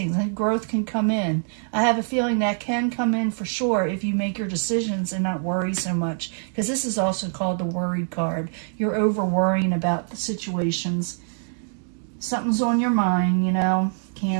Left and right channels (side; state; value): left; silent; 62 dB below the other